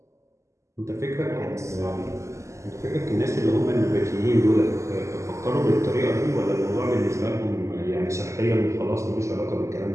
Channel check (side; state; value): left; late; 0.14 ms